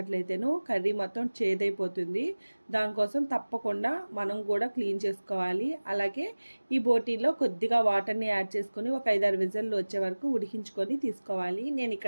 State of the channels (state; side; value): inverted; both; correlation -1.00